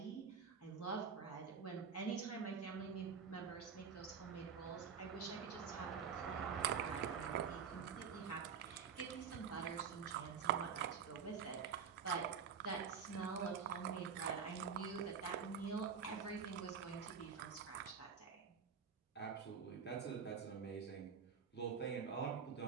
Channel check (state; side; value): quieter; left; 6.6 dB